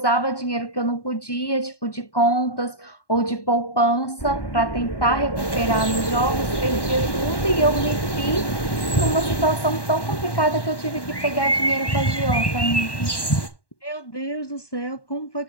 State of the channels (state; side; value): late; right; 1.1 ms